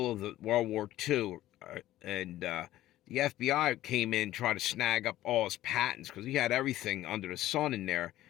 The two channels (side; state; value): right; quieter; 14.6 dB